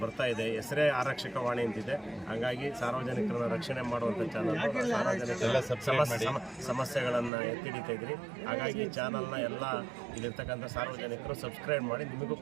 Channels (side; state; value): left; drops out; at 7.3 s